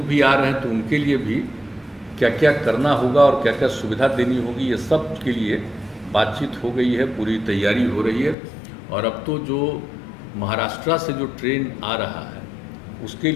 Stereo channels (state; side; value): drops out; right; at 8.3 s